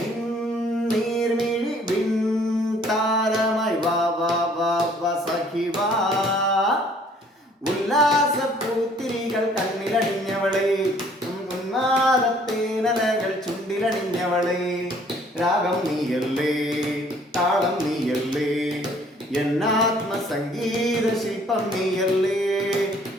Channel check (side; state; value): both; normal; correlation 0.58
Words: നീർമിഴി വിൺ താരമായി വാ വാ വാ വാ സഖി വാ. ഉല്ലാസപ്പൂത്തിരികൾ കണ്ണിലണിഞ്ഞവളെ, ഉന്മാദത്തേനലകൾ ചുണ്ടിലണിഞ്ഞവളെ. രാഗം നീയല്ലേ, താളം നീയല്ലേ, എന്നാത്മസംഗീത ശില്പം നീയല്ലേ.